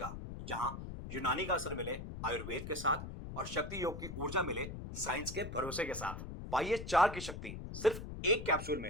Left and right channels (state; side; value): noise; left; rumble, 8 dB below the sound